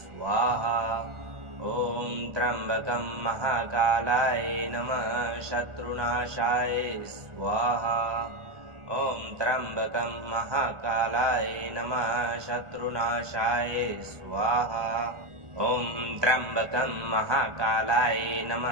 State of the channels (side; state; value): left; late; 1.4 ms